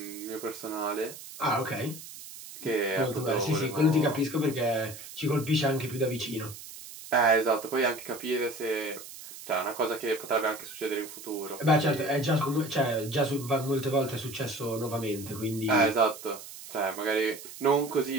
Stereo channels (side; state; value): right; noise; hiss, 14 dB below the sound